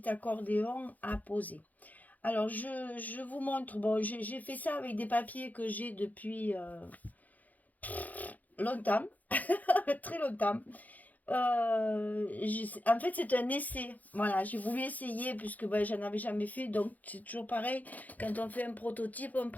accordéon à poser. Alors, je vous montre. Bon, j'ai fait ça avec des papiers que j'ai depuis longtemps, très longtemps. En fait, c'est un essai. Voilà, j'ai voulu essayer puisque ben, j'en avais jamais fait. Donc, c'est toujours pareil. Quand on fait un prototype, on ne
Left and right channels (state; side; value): late; right; 0.080 ms